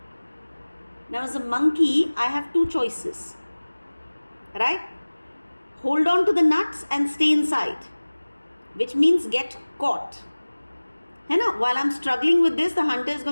Now as a monkey, I have two choices. Right? Hold on to the nuts and stay inside. Which means get caught. While I'm struggling with this, the hunter is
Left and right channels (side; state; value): both; inverted; correlation -1.00